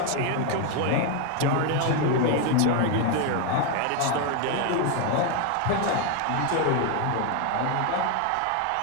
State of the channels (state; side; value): different; both; correlation 0.01